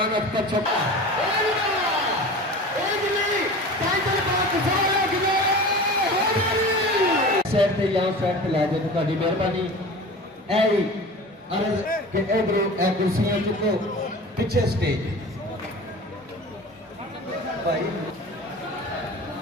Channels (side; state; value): both; normal; correlation 0.36